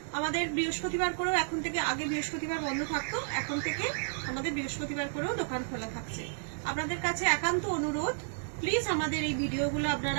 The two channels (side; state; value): left; silent; digital silence